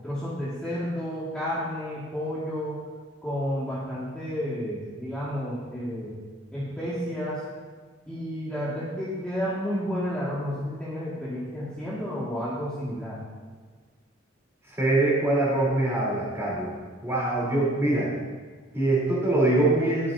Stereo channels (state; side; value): normal; both; correlation 0.56